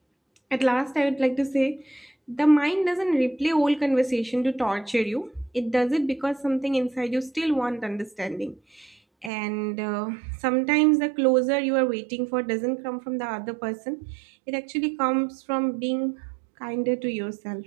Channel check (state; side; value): drops out; left; at 9.3 s